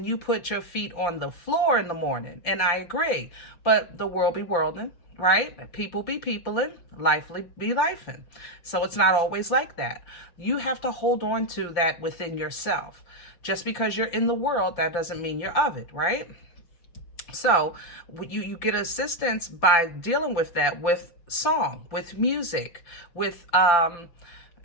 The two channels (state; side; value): late; right; 6.0 ms